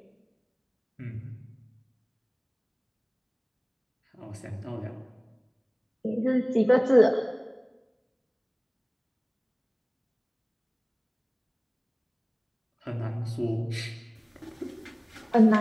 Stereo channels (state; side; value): identical; both; correlation 1.00